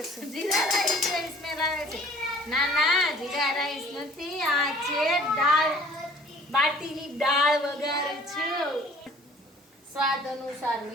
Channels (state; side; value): normal; both; correlation 0.51